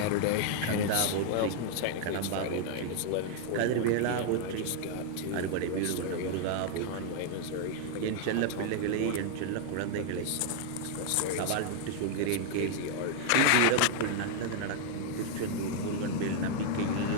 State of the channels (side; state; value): both; different; correlation 0.00